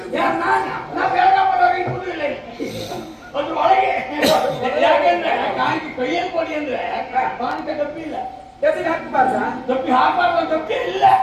ನಾ ಬೆಳಗ್ಗೆ ಇರುವುದಿಲ್ಲ ಅದ್ರ ಒಳಗೆ. ಯಾಕೆಂದ್ರೆ ಕಾಣಿಕೆ ಕೈಯಲ್ಲಿ ಕೊಡಿ ಅಂದ್ರೆ ಕಾಣಿಕೆ ಡಬ್ಬಿ ಇಲ್ಲ, ಡಬ್ಬಿಗೆ ಹಾಕಬಾರ್ದ? ಡಬ್ಬಿ ಹಾಕಬಾರ್ದು, ಡಬ್ಬಿ ಇಲ್ಲ.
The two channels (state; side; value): identical; both; correlation 1.00